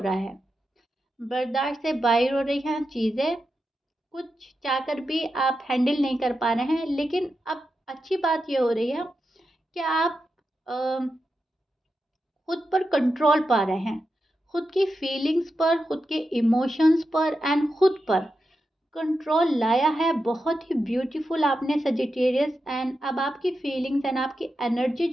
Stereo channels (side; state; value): both; normal; correlation 0.88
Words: है, बर्दाश्त से बाहर हो रही हैं चीज़ें, कुछ चाहकर भी आप हैंडल नहीं कर पा रहे हैं। लेकिन अब अच्छी बात ये हो रही है कि आप खुद पर कंट्रोल पा रहे हैं, खुद की फीलिंग्स पर, खुद के इमोशंस पर एंड खुद पर कंट्रोल लाया है। बहुत ही ब्यूटीफुल आपने सजिटेरियस। एंड अब आपकी फीलिंग्स एंड आपकी एनर्जी